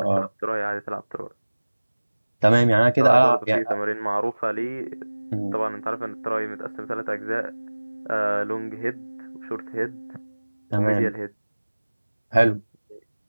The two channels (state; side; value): inverted; both; correlation -1.00